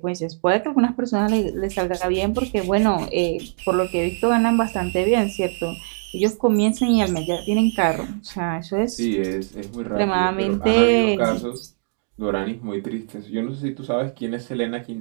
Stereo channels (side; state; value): left; silent; 63 dB below the other